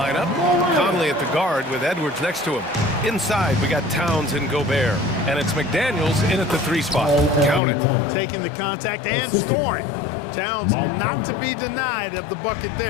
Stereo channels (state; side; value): drops out; right; at 7.6 s